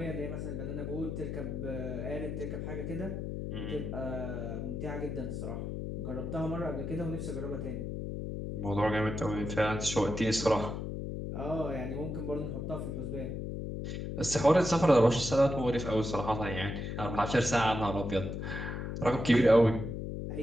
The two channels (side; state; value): left; noise; hum, 4 dB below the sound